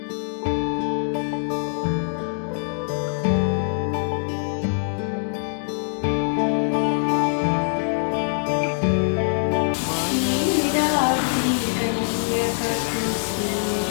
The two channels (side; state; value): right; silent; digital silence